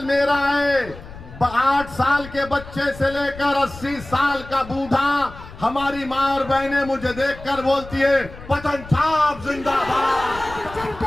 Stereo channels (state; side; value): noise; left; rumble, 16 dB below the sound